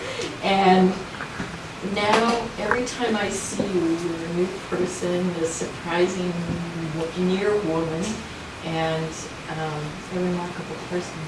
And now, every time I see you, you're a new person, a surprising near woman, and a remarkable person.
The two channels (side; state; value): both; identical; correlation 1.00